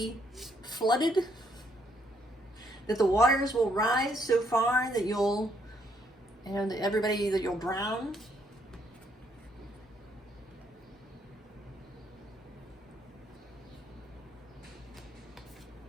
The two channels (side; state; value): both; normal; correlation 0.71